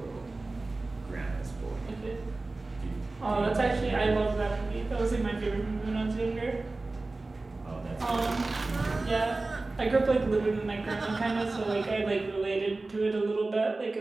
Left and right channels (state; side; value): quieter; left; 3.3 dB